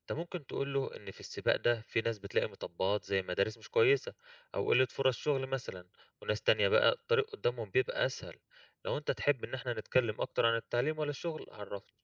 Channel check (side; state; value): both; identical; correlation 1.00